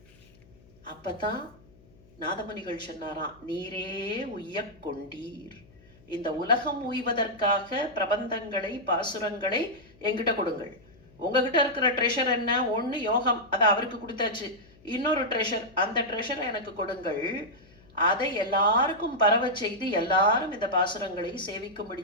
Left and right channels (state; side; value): noise; left; hum, 27 dB below the sound